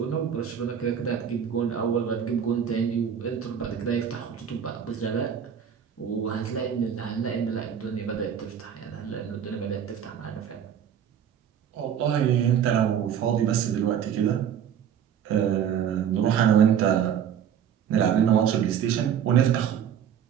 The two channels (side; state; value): left; quieter; 8.6 dB